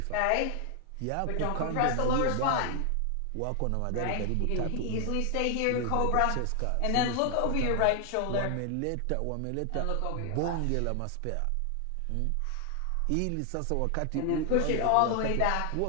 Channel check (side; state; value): both; different; correlation 0.00